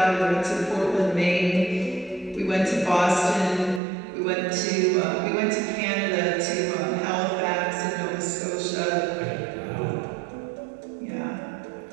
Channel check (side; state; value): left; drops out; at 3.8 s